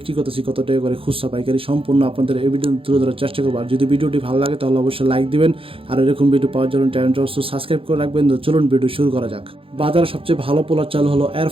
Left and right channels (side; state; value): left; late; 0.27 ms